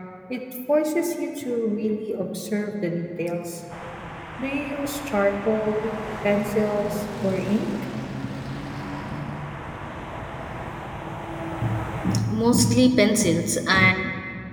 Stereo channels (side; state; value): both; identical; correlation 1.00